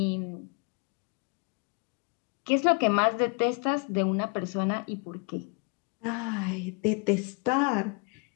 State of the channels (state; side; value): quieter; right; 32.7 dB